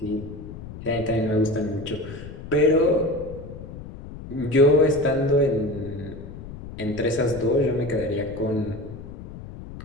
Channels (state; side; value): noise; left; rumble, 13 dB below the sound